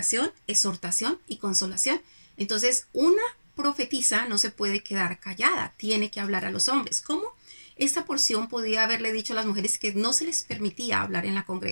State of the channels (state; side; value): inverted; both; correlation -1.00